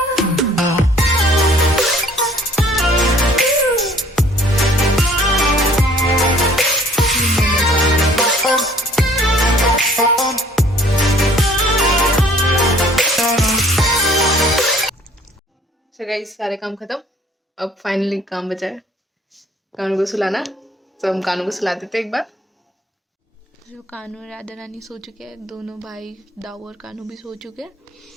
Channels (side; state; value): both; normal; correlation 0.55